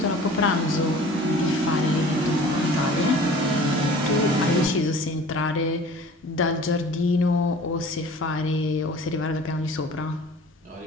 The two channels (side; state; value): both; normal; correlation 0.45